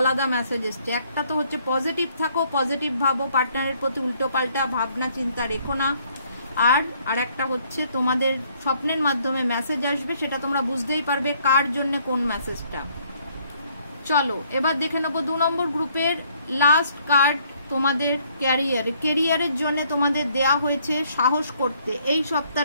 মেসেজ এসছে। একটা তো হচ্ছে পজিটিভ থাকো, পজিটিভ ভাবো, পার্টনারের প্রতি উল্টো পাল্টা ভাবনা চিন্তা রেখো না। আর একটা হচ্ছে তোমাদের স্বপ্নের মাধ্যমে মেসেজ আসবে, সেটা তোমরা বুঝতেই পারবে কার জন্য কোন মেসেজটা। চলো এবার দেখে নেবো 2 নম্বর গ্রুপের লাস্ট কার্ড। তোমাদের ক্যারিয়ারের জন্য তোমাদের দেয়া হয়েছে সাহস করতে। এই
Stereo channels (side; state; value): both; inverted; correlation -0.65